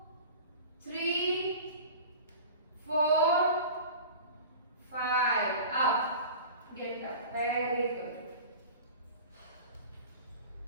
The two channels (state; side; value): inverted; both; correlation -0.37